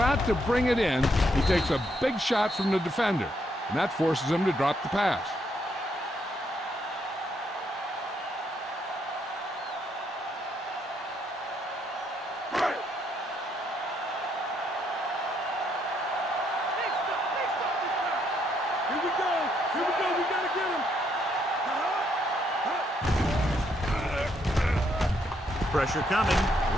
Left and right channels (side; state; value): both; normal; correlation 0.74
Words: to bring it in, he takes a big shot from the defender, and that forces him to drop the pass. Pressure coming,